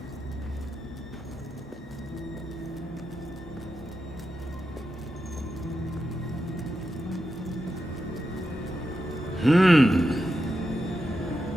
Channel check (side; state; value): both; normal; correlation 0.88